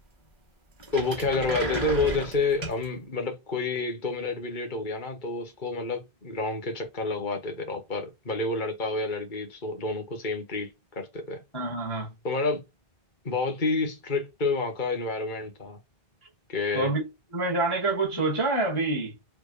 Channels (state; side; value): late; right; 1.4 ms